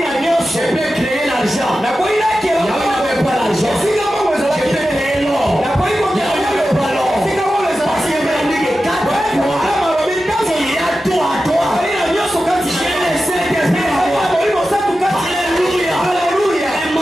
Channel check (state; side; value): normal; both; correlation 0.92